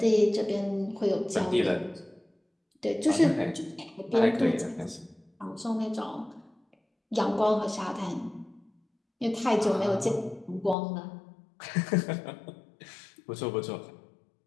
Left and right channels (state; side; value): drops out; right; at 10.8 s